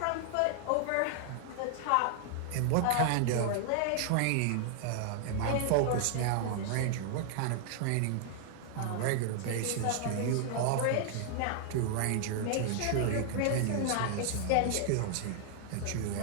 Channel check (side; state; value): both; different; correlation -0.01